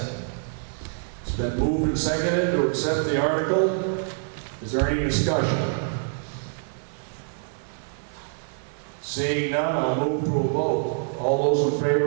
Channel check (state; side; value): silent; left; digital silence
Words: It's been moved and seconded to accept the article. Is there any discussion? Seeing none, I'll move to a vote. All those in